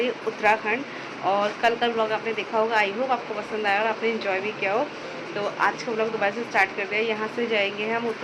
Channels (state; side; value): identical; both; correlation 1.00